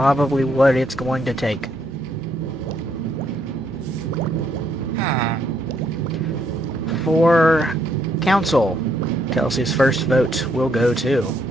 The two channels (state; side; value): normal; both; correlation 0.73